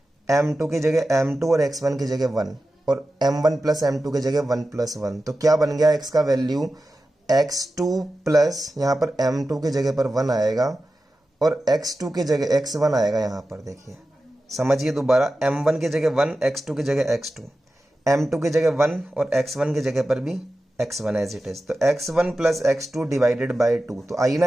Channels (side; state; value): both; normal; correlation 0.93